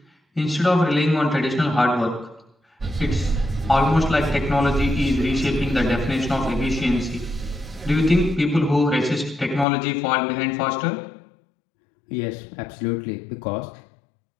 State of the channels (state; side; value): drops out; right; at 9.7 s